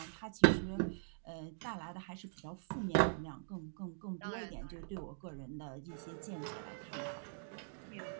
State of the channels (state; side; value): silent; left; digital silence